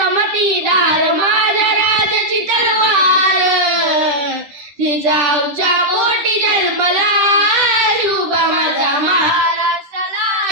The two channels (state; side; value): late; left; 10 ms